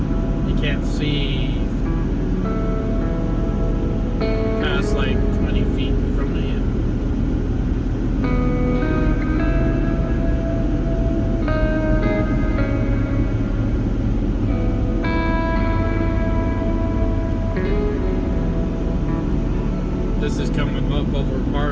You can't see past like 20 feet from the end. This is coming up over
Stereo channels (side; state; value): both; identical; correlation 1.00